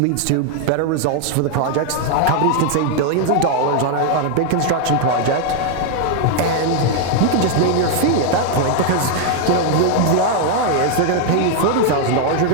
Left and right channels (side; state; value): both; different; correlation 0.00